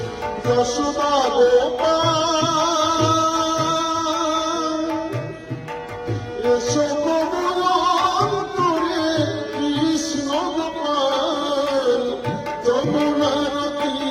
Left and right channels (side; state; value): both; identical; correlation 1.00